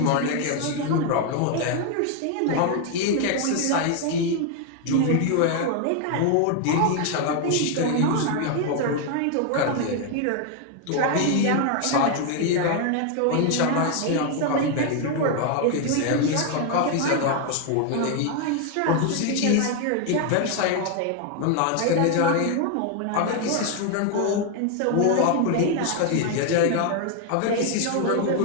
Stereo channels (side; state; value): both; different; correlation 0.01